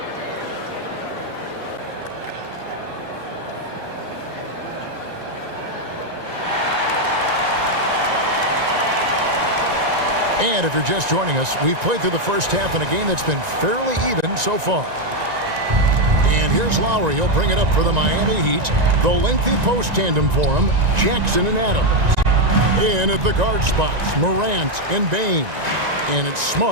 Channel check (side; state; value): left; late; 1.9 ms